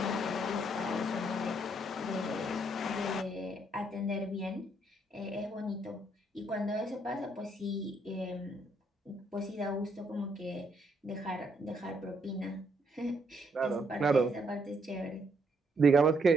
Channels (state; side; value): normal; both; correlation 0.73